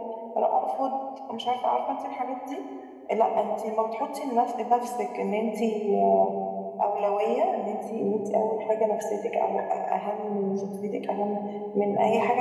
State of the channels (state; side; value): identical; both; correlation 1.00